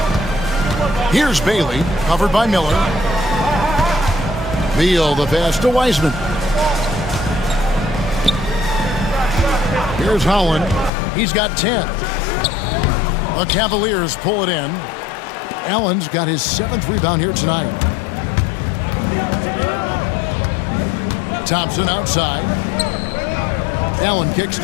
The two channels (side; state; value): right; drops out; at 10.9 s